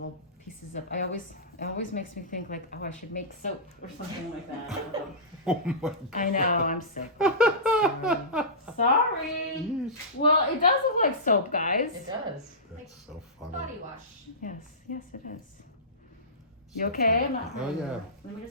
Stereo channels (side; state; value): both; normal; correlation -0.20